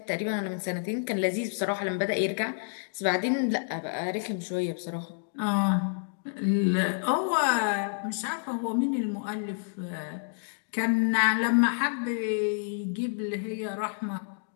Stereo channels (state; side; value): silent; right; digital silence